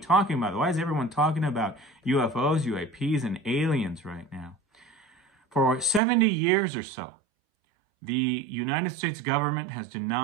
about it? Why is everyone talking about UFOs, UAPs, and aliens right now? For 70 years or so, the United States government has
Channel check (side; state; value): left; drops out; at 6.0 s